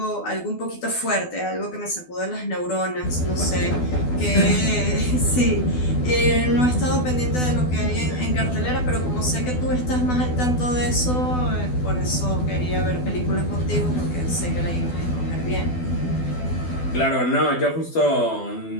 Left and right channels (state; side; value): late; right; 12 ms